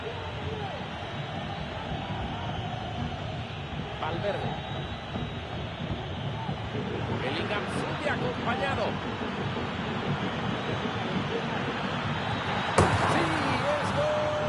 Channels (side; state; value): both; identical; correlation 1.00